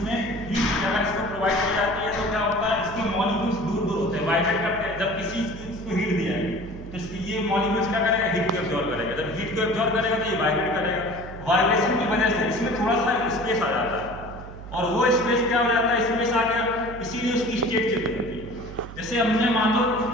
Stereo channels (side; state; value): right; noise; hum, 13 dB below the sound